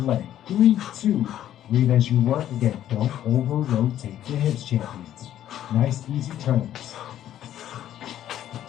3-2. Breathe as you work. Again, don't over-rotate the hips, champions. Nice, easy turns.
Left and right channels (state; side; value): quieter; right; 11.7 dB